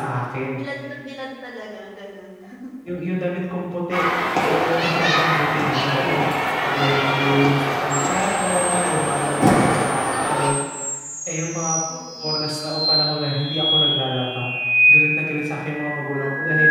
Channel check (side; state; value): both; identical; correlation 1.00